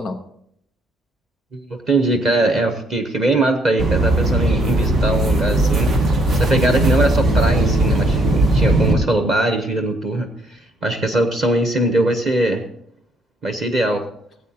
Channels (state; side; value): normal; both; correlation 0.69